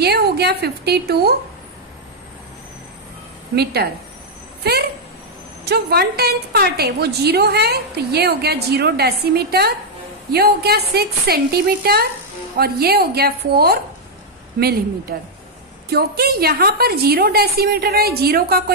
हो गया 52 मीटर। फिर जो 1/10 पार्ट है वो 0 है, तो ये हो गया 0 डेसीमीटर, ये हो गया 6 सेंटीमीटर, और ये हो गया 4 मिलीमीटर। क्योंकि यहाँ पर 0 डेसीमीटर है, 0 का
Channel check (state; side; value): normal; both; correlation -0.03